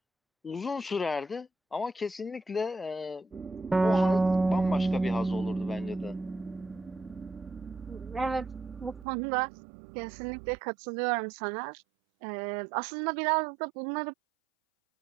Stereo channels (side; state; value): left; drops out; at 9.1 s